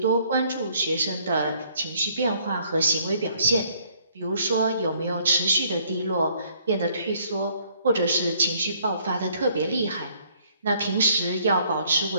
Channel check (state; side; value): inverted; both; correlation -0.63